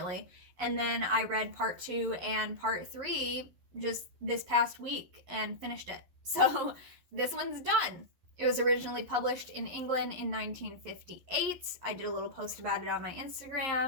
And then I read part 2 and part 3 just this past week and finished it. So this one's done. It was originally published in England in 1958. I did a little post about it on my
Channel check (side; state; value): left; late; 11 ms